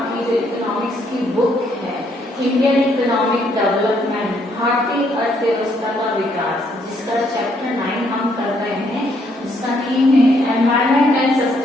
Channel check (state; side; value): normal; both; correlation 0.70